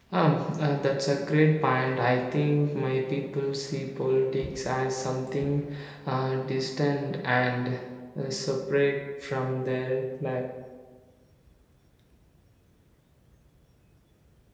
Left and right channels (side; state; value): both; identical; correlation 1.00